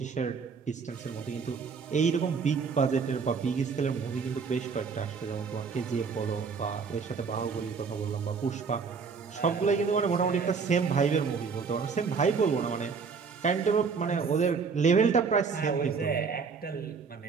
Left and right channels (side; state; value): left; quieter; 5.4 dB